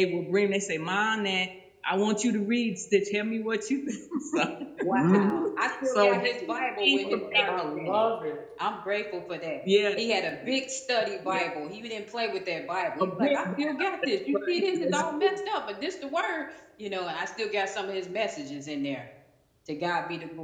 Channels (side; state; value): both; identical; correlation 1.00